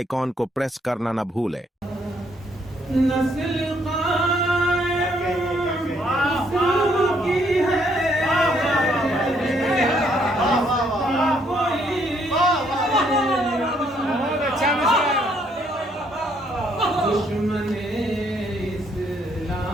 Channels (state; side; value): normal; both; correlation 0.69